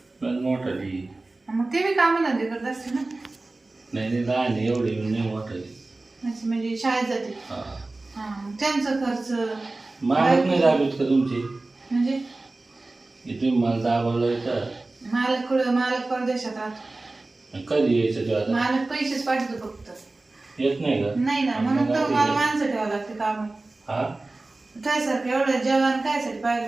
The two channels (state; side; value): quieter; left; 3.1 dB